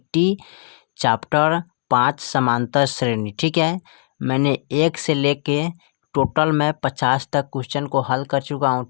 चैप्टर 5 समांतर श्रेणी। ठीक है, मैंने 1 से लेके टोटल मैं 50 तक क्वेश्चन को हल कर चुका हूँ।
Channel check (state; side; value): silent; right; digital silence